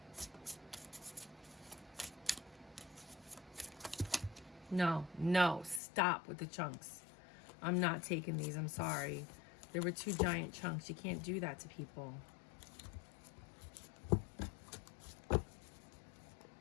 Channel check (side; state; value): right; drops out; at 5.8 s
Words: No, no, stop with the chunks. I'm not taking these, I'm sorry. There were 2 giant chunks. You can't do that to people.